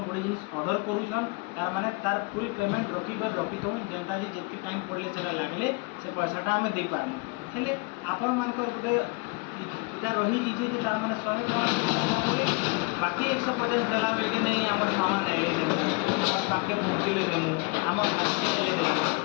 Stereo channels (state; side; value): quieter; right; 28.6 dB